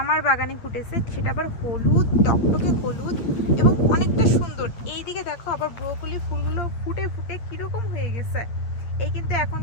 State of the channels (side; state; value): right; late; 8.8 ms